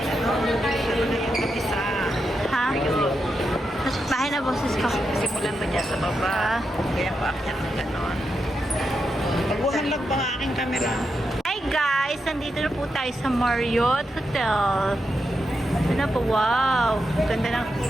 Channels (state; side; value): normal; both; correlation 0.85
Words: Ha? Nasa bahay na boses ko. Simulan ba niya sa baba? Kaya pa akyat ng ganon. Pagbuhan lang pa ang aking camera. Hi guys! Nandito na po tayo sa Marriott Hotel. Ito na po, wow! Ganda ng...